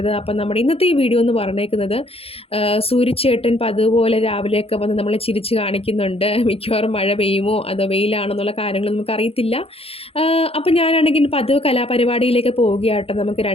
അപ്പം നമ്മുടെ ഇന്നത്തെ ഈ വീഡിയോ എന്ന് പറഞ്ഞേക്കുന്നത് സൂര്യചേട്ടൻ പതുപോലെ രാവിലെയൊക്കെ വന്ന് നമ്മളെ ചിരിച്ച് കാണിക്കുന്നുണ്ട്. മിക്കവാറും മഴ പെയ്യുമോ അതോ വെയിലാണെന്നുള്ള കാര്യങ്ങൾ നമുക്കറിയത്തില്ല. അപ്പം ഞാനാണെങ്കിൽ പതിവ് കലാപരിപാടിയിലേക്ക് പോവുകയാട്ടോ. നമുക്ക്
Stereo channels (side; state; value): right; late; 0.28 ms